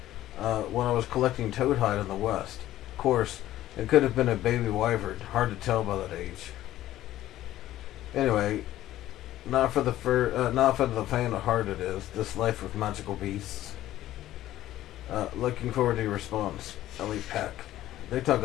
when I was collecting toadhide in the West. Of course, it could have been a baby wyvern. Hard to tell by that age. Anyway, not for the faint of heart it is. This life with magical beasts. Looking forward to your response, Ellie Peck. They talking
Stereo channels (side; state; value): right; quieter; 14.0 dB